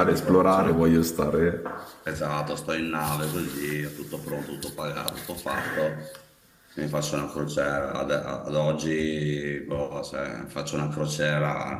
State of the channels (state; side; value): identical; both; correlation 1.00